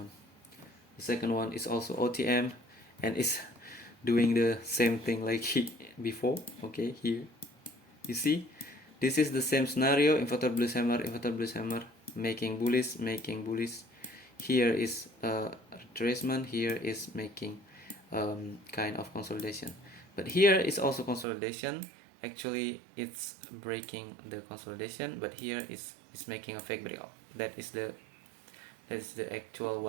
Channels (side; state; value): left; drops out; at 21.2 s